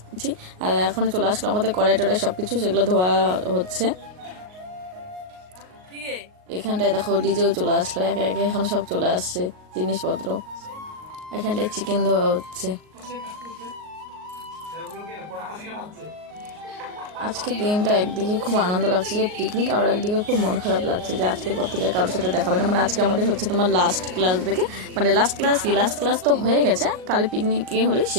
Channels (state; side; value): late; left; 38 ms